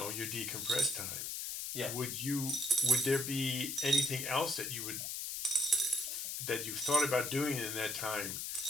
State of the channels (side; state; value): left; noise; hiss, 4 dB below the sound